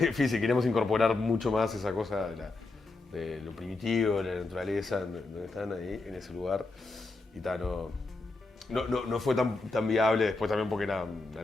Queríamos incorporar mucho más esa cosa de lo primitivo, de la naturaleza, donde están ahí, en ese lugar. Y no fue tan viable después también porque era una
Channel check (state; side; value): quieter; right; 3.3 dB